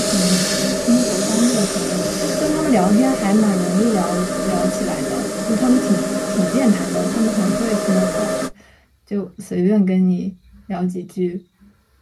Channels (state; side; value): identical; both; correlation 1.00